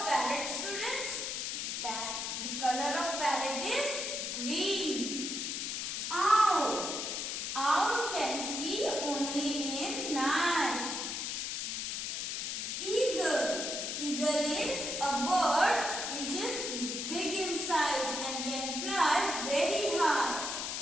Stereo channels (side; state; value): left; noise; hiss, 3 dB below the sound